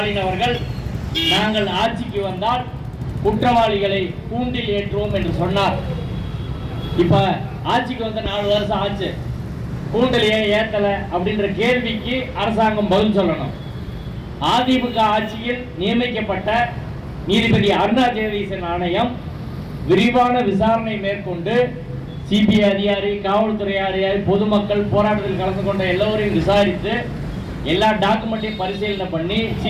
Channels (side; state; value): both; identical; correlation 1.00